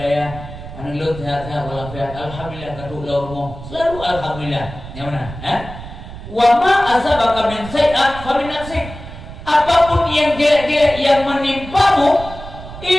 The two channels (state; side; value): noise; right; rumble, 13 dB below the sound